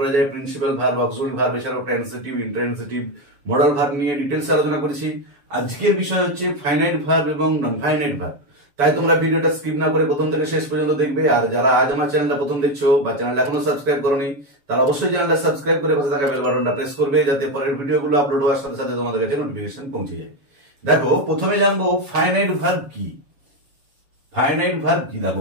যায়, প্রিন্সিপাল ভার্ব, অক্সিলারি ভার্ব, এছাড়াও ট্রান্সিটিভ, ইন্ট্রান্সিটিভ, মডাল ভার্ব নিয়ে ডিটেলসে আলোচনা করেছি। আজকের বিষয় হচ্ছে ফাইনাইট ভার্ব এবং নন ফাইনাইট ভার্ব। তাই তোমরা ভিডিওটা স্কিপ না করে প্রথম থেকে শেষ পর্যন্ত দেখবে। আর যারা আজ আমার চ্যানেলটা প্রথম দেখছো বা চ্যানেলটা এখনো সাবস্ক্রাইব করোনি, তারা অবশ্যই চ্যানেলটা সাবস্ক্রাইব করে পাশে থাকা বেল বাটনটা প্রেস করবে, যাতে পরের ভিডিওগুলো আপলোড হওয়ার সাথে সাথে তোমাদের কাছে নোটিফিকেশন পৌঁছে যায়। দেখো, প্রথমে জানবো ফাইনাইট ভার্ব কি। ফাইনাইট ভার্ব কি? দেখো,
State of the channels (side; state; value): left; late; 7.1 ms